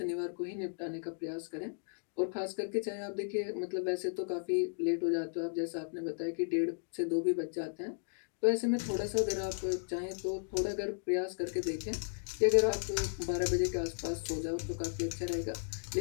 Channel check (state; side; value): silent; right; digital silence